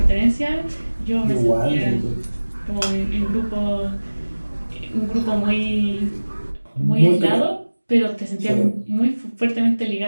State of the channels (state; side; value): inverted; both; correlation -1.00